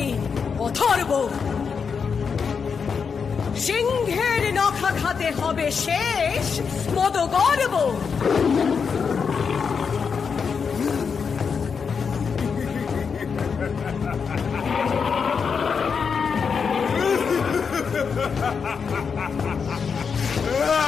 অথর্ব। সিংহের নখা খাতে হবে শেষ মদ গর্ব।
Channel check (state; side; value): quieter; right; 6.0 dB